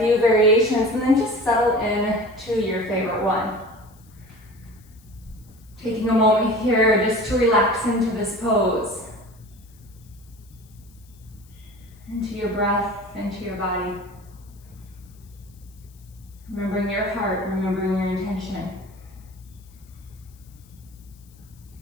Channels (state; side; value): noise; left; hiss, 29 dB below the sound